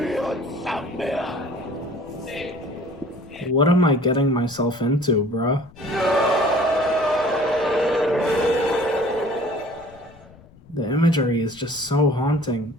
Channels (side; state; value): left; noise; rumble, 24 dB below the sound